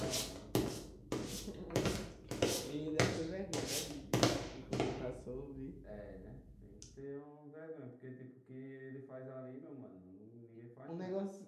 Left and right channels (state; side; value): identical; both; correlation 1.00